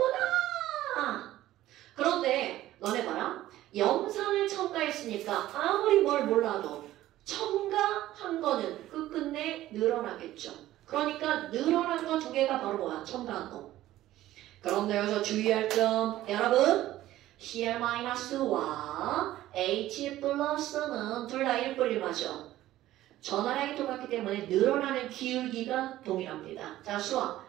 그런데 너네 봐라. 염산을 첨가했으니까 아무리 뭘 몰라도 첨가한 거는 끝끝내 늘어나겠죠. 그러니까 늘어난 거 2개가 바로 뭐야? 첨가한 거. 그런데 여기서 주의할 점, 여러분, Cl-와 H 플러스는 둘 다 1뿌리마죠. 전화량이 똑같기 때문에 늘어나는 기울기가 동일합니다. 자,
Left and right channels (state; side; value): quieter; left; 14.6 dB